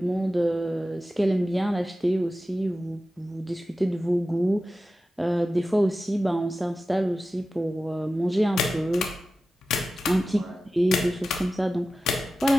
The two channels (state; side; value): normal; both; correlation 0.94